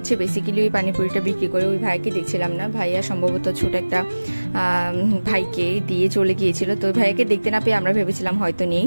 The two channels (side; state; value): both; inverted; correlation -1.00